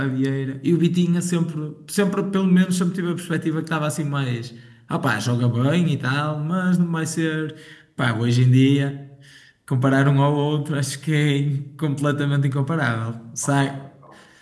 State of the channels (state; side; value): identical; both; correlation 1.00